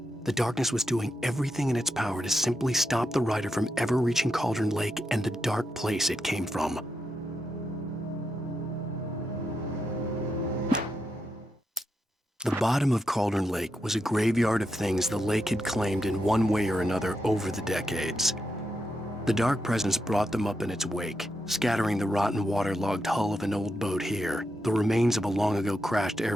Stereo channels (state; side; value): normal; both; correlation 0.85